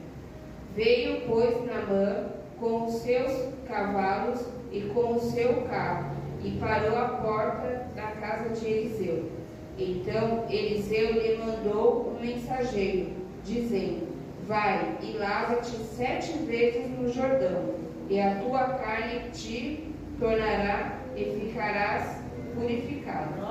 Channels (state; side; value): identical; both; correlation 1.00